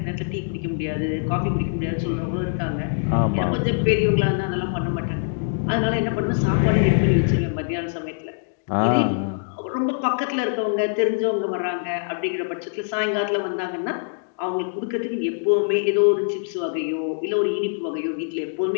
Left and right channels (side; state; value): right; silent; digital silence